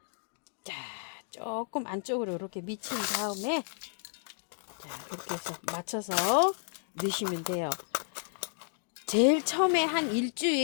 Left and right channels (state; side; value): silent; right; digital silence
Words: 자, 조금 안쪽으로 이렇게 미친 다음에 자, 이렇게 해서 맞춰서 넣으시면 돼요. 제일 처음에 한